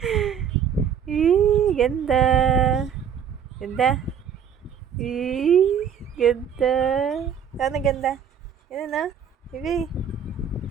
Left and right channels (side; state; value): left; quieter; 7.8 dB